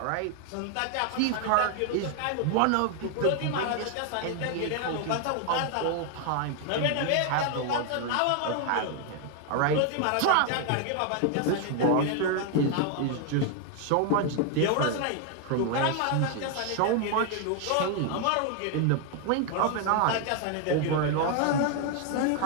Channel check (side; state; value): both; different; correlation 0.00